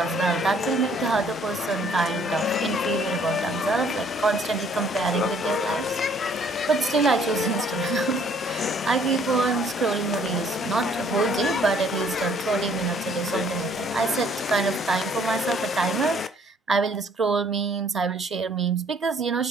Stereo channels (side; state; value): both; normal; correlation 0.61